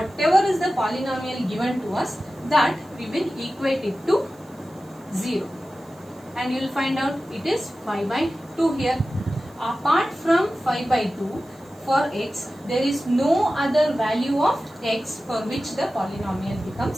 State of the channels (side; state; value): right; noise; hiss, 29 dB below the sound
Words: is the polynomial given to us, that we will equate it to 0, and you will find out it is 5 by 2 here. Apart from 5 by 2, for x, there is no other value of x for which the polynomial